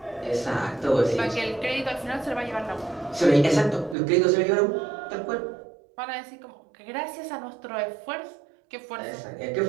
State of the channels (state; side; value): drops out; left; at 4.0 s